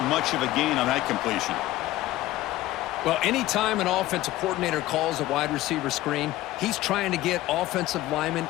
much of a gain on that completion. Well, anytime an offensive coordinator calls a wide receiver screen, he's trying to get offensive linemen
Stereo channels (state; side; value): quieter; right; 16.3 dB